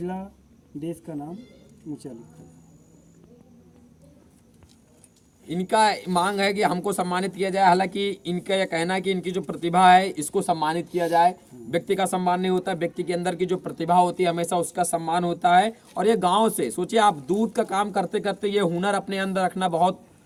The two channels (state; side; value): identical; both; correlation 1.00